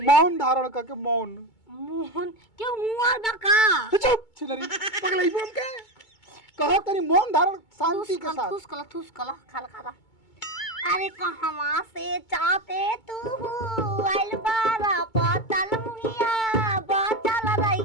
मौन धारण करके मौन। मोहन क्यों मुआ बका चुप छिलरी पगलाई बोल के कहो तनी मौन धारण शांति के साथ। थूस कला खाला खाला। अरे कहवा से चाहते तू आइल बारा पतल मुहिया बचल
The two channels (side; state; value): right; late; 2.2 ms